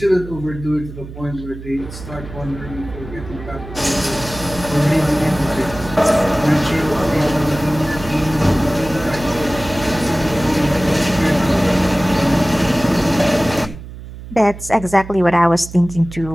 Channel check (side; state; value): right; noise; hum, 13 dB below the sound